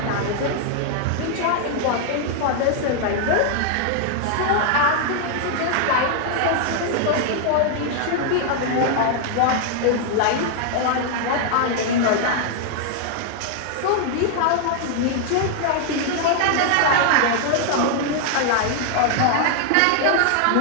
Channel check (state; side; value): different; both; correlation 0.00